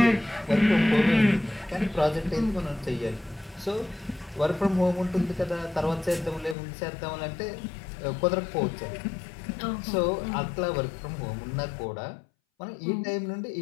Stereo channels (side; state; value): right; drops out; at 6.6 s